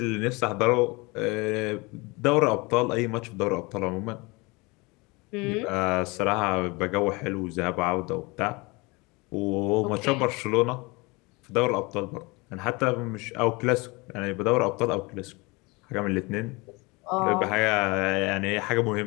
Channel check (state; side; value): quieter; right; 25.8 dB